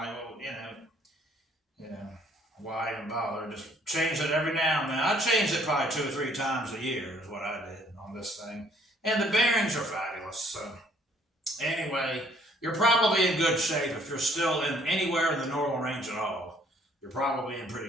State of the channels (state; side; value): normal; both; correlation 0.62